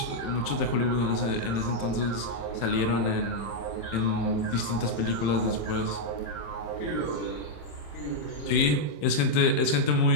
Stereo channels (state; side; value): late; right; 27 ms